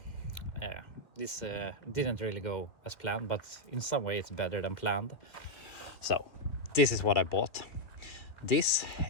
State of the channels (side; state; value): right; late; 1.8 ms